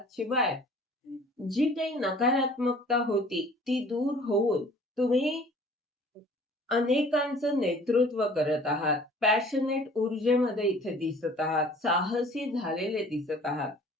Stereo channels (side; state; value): both; normal; correlation 0.50